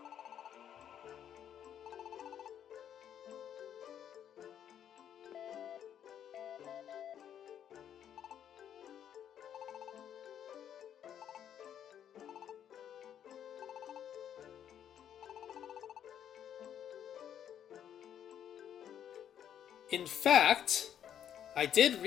In fact, I did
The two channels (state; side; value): quieter; right; 9.6 dB